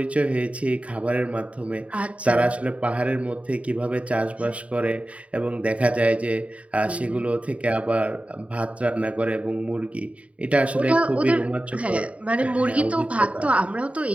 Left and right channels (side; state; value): left; late; 0.065 ms